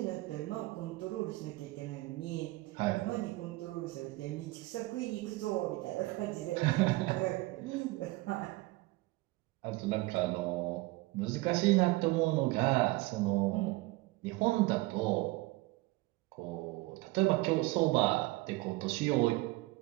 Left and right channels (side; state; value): left; quieter; 21.1 dB